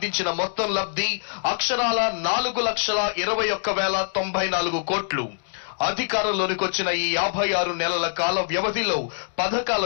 మొత్తం లబ్ధి అక్షరాల 4,21,094 కోట్లు. అధికారంలోనికి వచ్చిన ఈ 56 నెలల కాల వ్యవధిలో పథకాల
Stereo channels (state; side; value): silent; right; digital silence